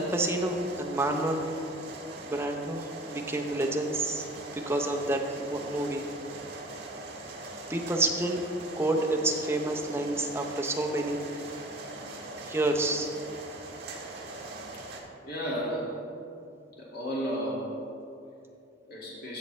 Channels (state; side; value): normal; both; correlation 0.42